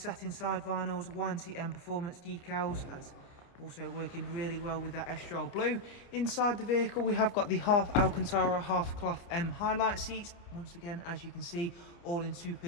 side vinyls, YNC Mperformance decals, that's also working really well with that Estrel Blue. Inside the vehicle we have got the half Alcantara, half cloth M highlight seats. Once again, as you can see, all in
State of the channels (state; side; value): late; right; 29 ms